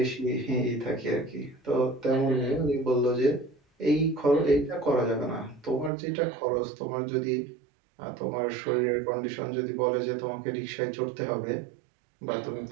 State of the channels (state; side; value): drops out; left; at 5.9 s